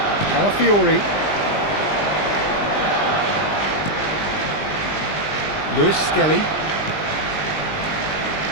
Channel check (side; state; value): right; late; 20 ms